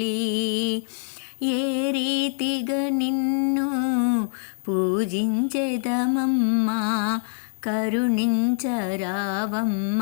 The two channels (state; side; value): silent; right; 62 dB below the other